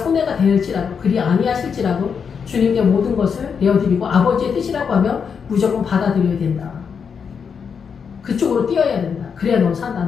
될지라도 그리 아니하실지라도 주님께 모든 것을 내어드리고 아버지의 뜻이라고 하면 무조건 받아들여야 된다. 그쪽으로 뛰어야 된다. 그래야 너 산다.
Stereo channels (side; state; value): right; quieter; 6.5 dB